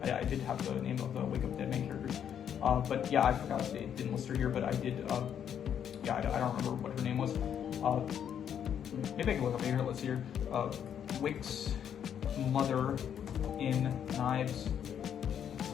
I did have the name of the Wake Up Dead main characters. But yeah, I forgot they didn't list her here, but I did. Yeah, I don't remember what her name was. Maybe I can look up here. Let's see here. Wick's mother in Knives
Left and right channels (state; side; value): quieter; right; 8.9 dB